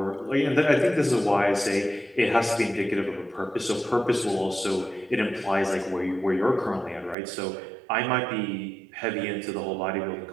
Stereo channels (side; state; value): left; drops out; at 7.2 s